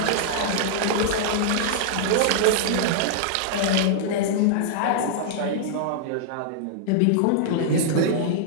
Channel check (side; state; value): both; different; correlation -0.01